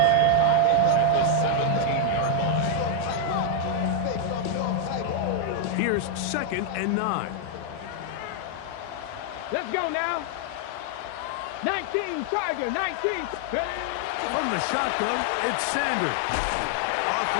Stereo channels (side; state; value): both; different; correlation 0.00